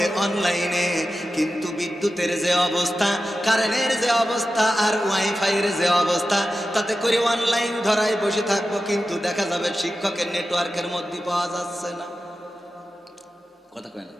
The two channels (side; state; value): both; normal; correlation 0.92